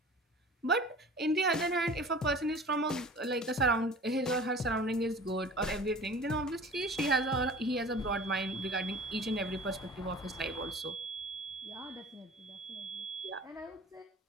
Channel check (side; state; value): both; normal; correlation 0.42